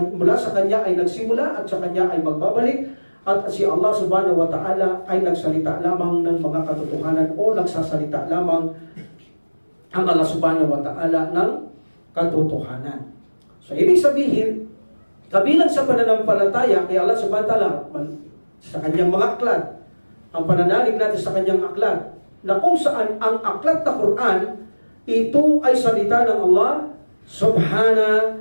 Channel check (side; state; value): both; inverted; correlation -1.00